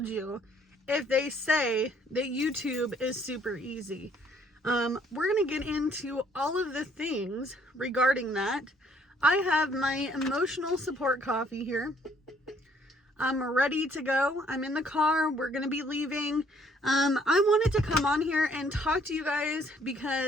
you if they say that YouTube is super easy. We're going to get into all of the things regarding that. I have my emotional support coffee here. I'm ready to go. I'm in the car. We're going to be leaving. I wanted to come on here and talk to you guys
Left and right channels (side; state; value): both; normal; correlation 0.64